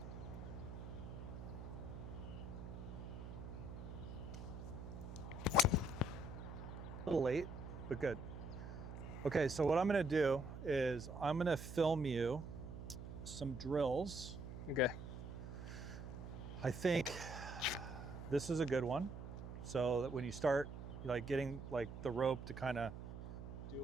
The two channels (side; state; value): right; noise; hum, 9 dB below the sound